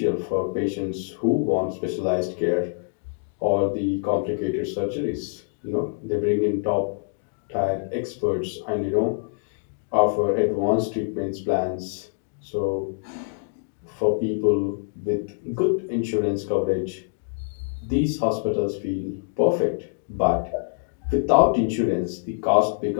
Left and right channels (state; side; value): silent; right; digital silence